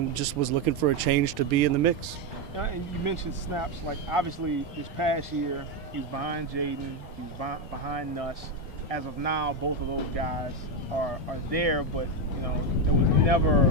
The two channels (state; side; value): normal; both; correlation 0.09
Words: just was looking for a change to be in the mix. And you mentioned snaps. Obviously, this past year, he was behind Jaden, he was behind Nuss. As of now, both of those guys are there, but there was never